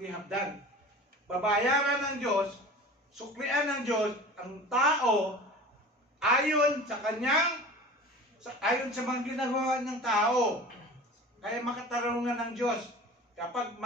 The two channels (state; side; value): normal; both; correlation 0.39